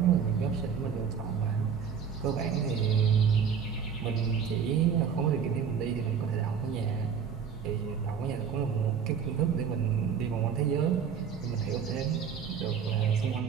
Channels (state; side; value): quieter; left; 7.0 dB